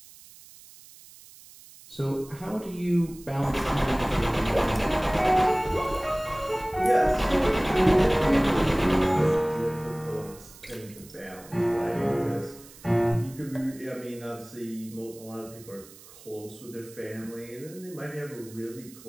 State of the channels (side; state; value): right; noise; hiss, 21 dB below the sound